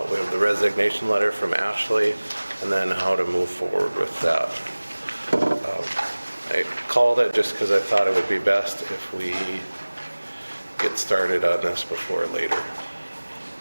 We have the resignation letter from Ashley and then how to move forward with that. I called it just because I thought it would be best if we get started on this before later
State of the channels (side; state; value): both; inverted; correlation -1.00